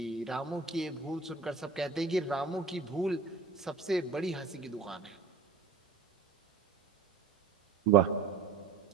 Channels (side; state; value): left; quieter; 4.9 dB